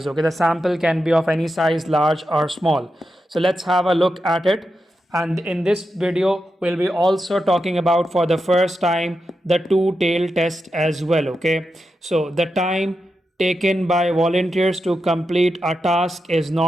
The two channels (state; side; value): normal; both; correlation 0.88